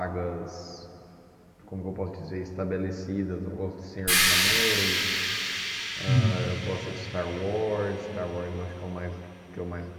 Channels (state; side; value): identical; both; correlation 1.00